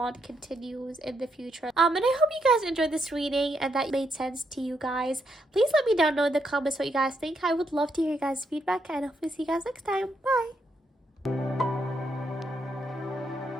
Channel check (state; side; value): normal; both; correlation 0.78